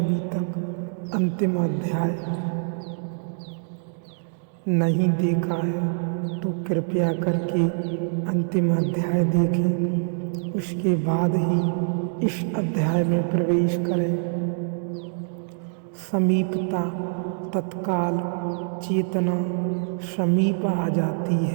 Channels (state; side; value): silent; left; digital silence